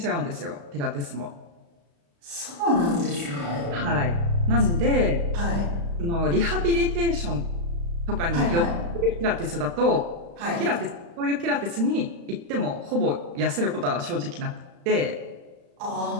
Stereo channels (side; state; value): left; late; 35 ms